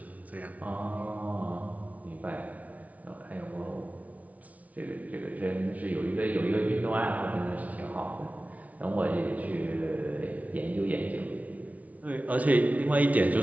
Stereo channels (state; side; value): late; left; 0.070 ms